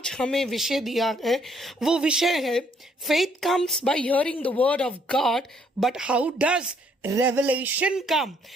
हमें विषय दिया है वो विषय है faith comes by hearing the word of God, but how does revelation come.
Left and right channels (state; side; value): normal; both; correlation 0.67